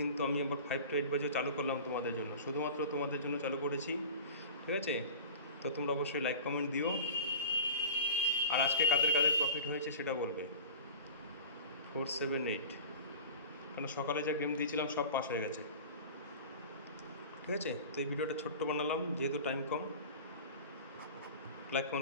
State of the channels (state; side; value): inverted; both; correlation -0.36